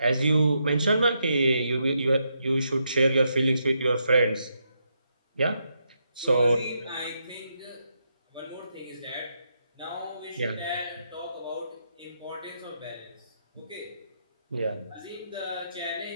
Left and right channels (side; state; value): both; inverted; correlation -0.81